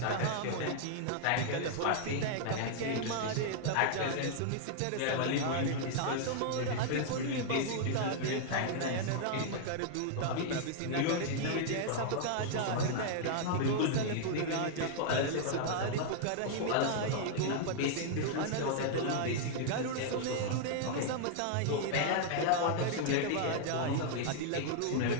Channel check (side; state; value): both; different; correlation -0.01